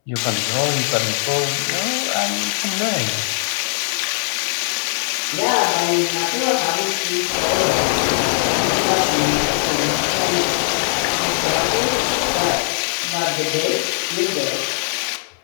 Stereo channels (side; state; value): right; silent; 66 dB below the other